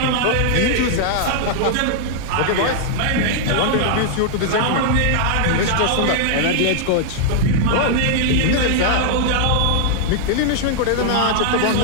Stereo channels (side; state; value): both; different; correlation -0.01